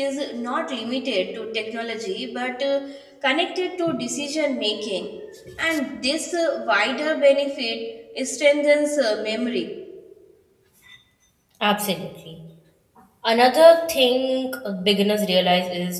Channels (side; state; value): both; identical; correlation 1.00